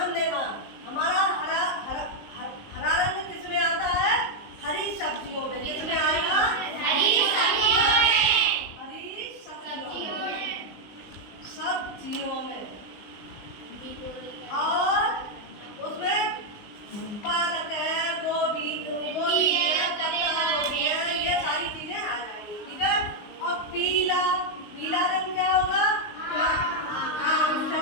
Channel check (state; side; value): late; right; 19 ms